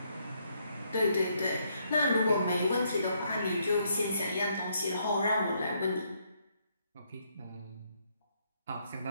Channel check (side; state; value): both; inverted; correlation -0.73